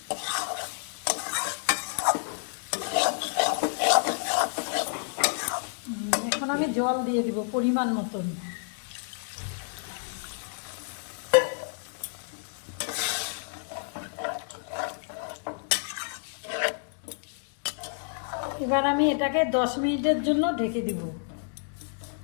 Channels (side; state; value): right; silent; digital silence